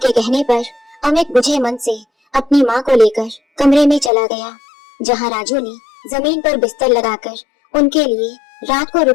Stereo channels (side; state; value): right; drops out; at 4.1 s